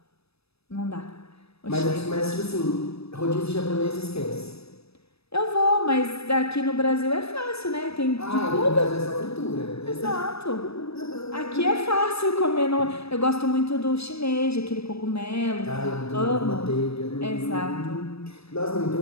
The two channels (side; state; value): right; late; 0.78 ms